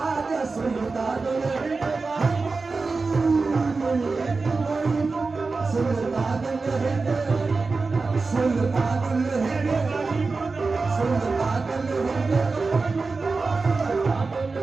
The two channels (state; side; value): quieter; left; 4.1 dB